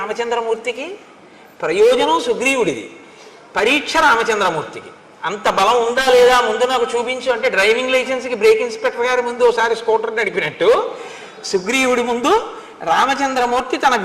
ప్రయోజనం సుగ్రీవుడిది, పరీక్ష రామచంద్రమూర్తికి. అంత బలం ఉందా లేదా ముందు నాకు చూపించు అంటే డ్రైవింగ్ లైసెన్స్కి బ్రేక్ ఇన్స్పెక్టర్ గారి ముందు ఒకసారి స్కూటర్ నడిపినట్టు సుగ్రీవుడి ముందు రామచంద్రమూర్తి తన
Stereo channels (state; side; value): identical; both; correlation 1.00